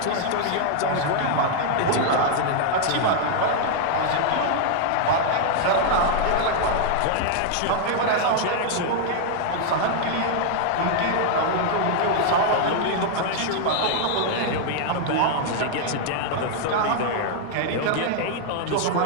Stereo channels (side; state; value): both; different; correlation 0.00